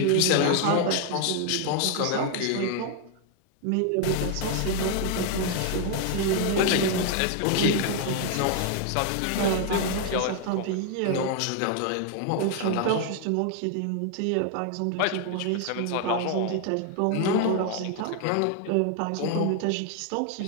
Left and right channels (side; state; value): both; different; correlation 0.00